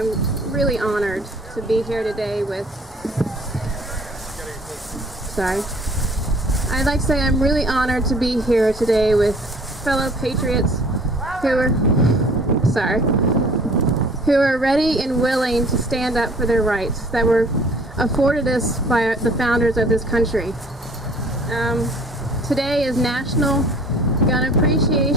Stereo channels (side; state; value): both; normal; correlation 0.52